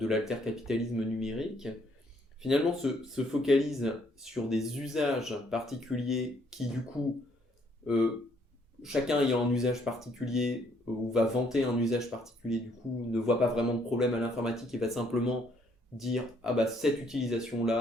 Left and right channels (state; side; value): normal; both; correlation 0.67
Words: l'altercapitalisme numérique, finalement se focalise sur des usages particuliers qui du coup, chacun ayant un usage particulier ou va vanter un usage particulier, du coup ne voit pas vraiment de problème à l'informatique et va simplement dire cette utilisation